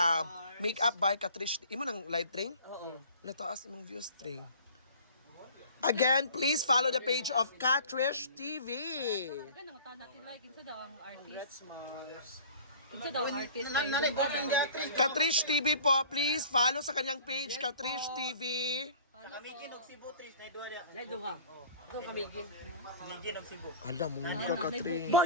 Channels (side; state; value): both; inverted; correlation -0.45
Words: Make-up by Catrice. Imo ng light ring? Oo. Nataas imong views string. Again, please follow the page of Catrice TV. Ano taon natin like kinsa daw ang artist? Congrats, Mars. Kinsa daw ang artist? Catrice TV po, please follow sa kanyang page, Catrice TV. Kamigin og Cebu, Tris. Naido ka. Ako kamigin. Kamigin og Cebu. Alam mo ka, Catrice.